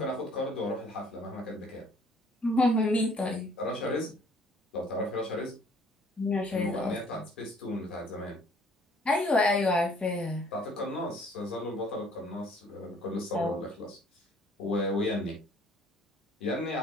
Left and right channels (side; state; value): both; normal; correlation 0.58